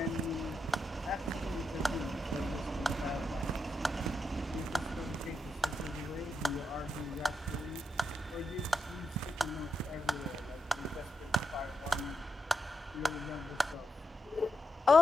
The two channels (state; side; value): normal; both; correlation 0.84